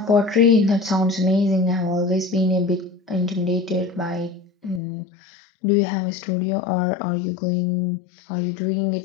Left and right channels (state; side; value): drops out; right; at 4.8 s